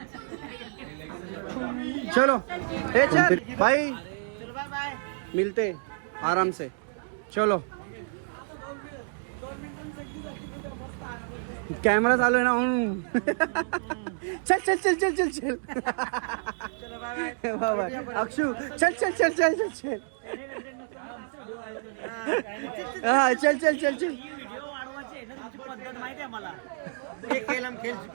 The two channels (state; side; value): silent; left; digital silence